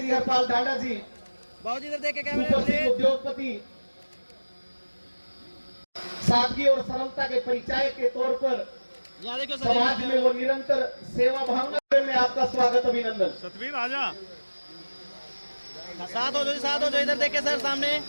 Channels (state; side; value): inverted; both; correlation -1.00